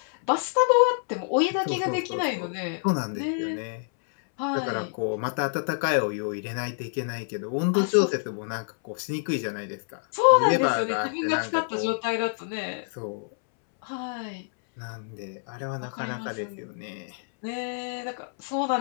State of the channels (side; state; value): right; silent; 60 dB below the other